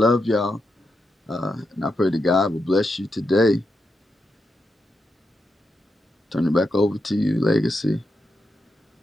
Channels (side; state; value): both; normal; correlation 0.85